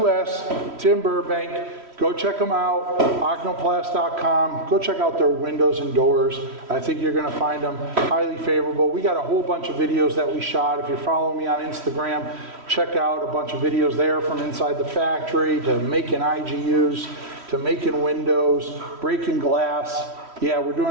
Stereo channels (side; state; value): left; late; 3.1 ms